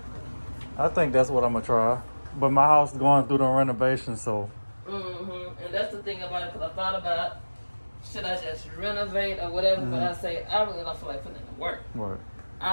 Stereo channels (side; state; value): both; inverted; correlation -1.00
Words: I think that's what I'm gonna try. But my house is going through the renovation, so. And that's the thing about it, because I thought about, should I just renovate or whatever? But I say I really don't feel like putting in the work. Right.